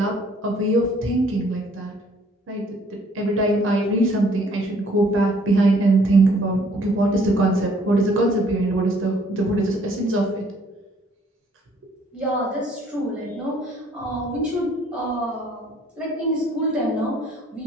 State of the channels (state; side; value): normal; both; correlation 0.60